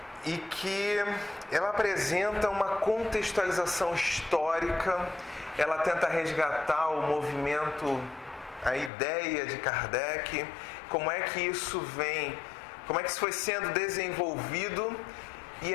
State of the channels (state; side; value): drops out; right; at 8.9 s